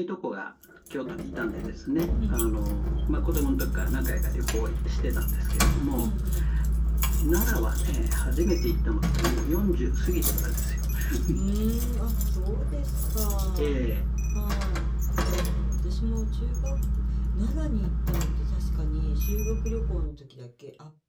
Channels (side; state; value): both; identical; correlation 1.00